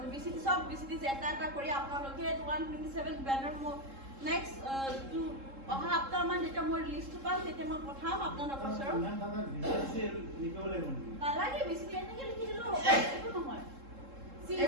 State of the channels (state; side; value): late; left; 3.7 ms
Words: বিসিডি সব বিসিডিসি এটা কৰি আপোনালোকে 127 বেনাৰ মই নেক্সট অহা সপ্তাহমান যেতিয়া মই লিষ্টটো পাম তেতিয়া মই পঠাম আপোনালোকৰ ওচৰত নালাগে বিসিডি এনেকৈ লিখি দিলেও হ'ব একো নহয়